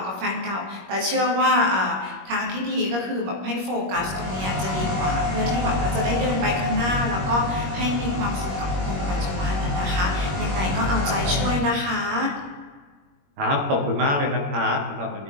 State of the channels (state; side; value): late; left; 21 ms